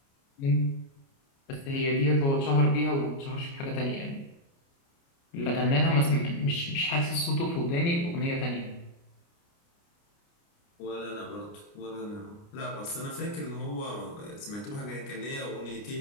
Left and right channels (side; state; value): right; late; 29 ms